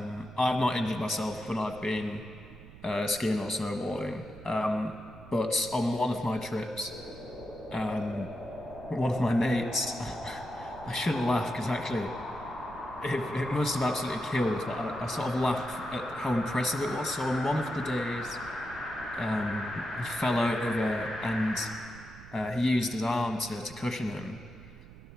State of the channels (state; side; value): noise; right; rumble, 18 dB below the sound